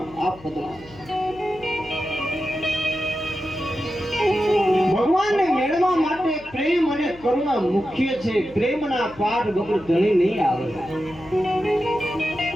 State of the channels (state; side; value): noise; left; hum, 21 dB below the sound